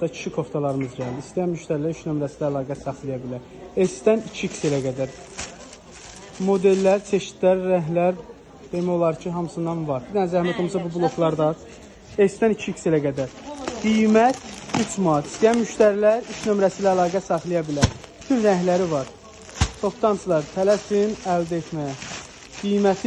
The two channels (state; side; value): identical; both; correlation 1.00